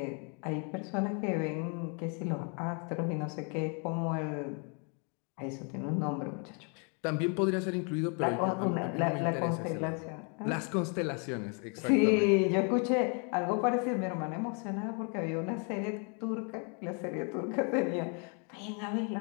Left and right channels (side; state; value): right; quieter; 37.9 dB